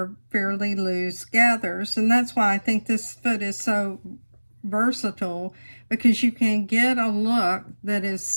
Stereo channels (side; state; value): both; inverted; correlation -1.00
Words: fairly loose gathers, and that's why I think this foot is so versatile, because you can get a look that is